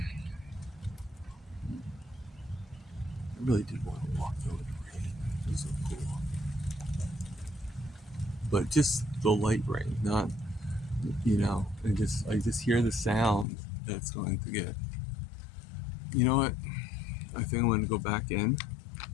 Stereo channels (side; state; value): right; drops out; at 13.5 s